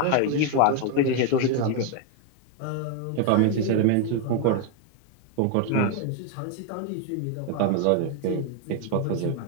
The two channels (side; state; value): both; different; correlation 0.01